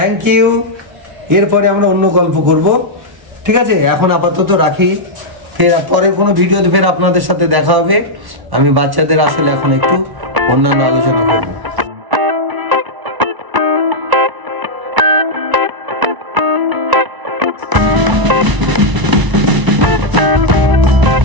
ইউ। এরপরে আমরা অন্য গল্প করব, ঠিক আছে? এখন আপাতত রাখি, ফের পরের কোনো ভিডিওতে ফের আপনাদের সাথে দেখা হবে। আমি বাচ্চাদের আসলে এখন একটু অন্যান্য আলোচনা করব।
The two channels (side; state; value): left; late; 1.0 ms